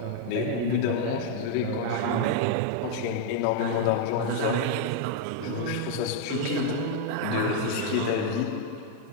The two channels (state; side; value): different; both; correlation 0.00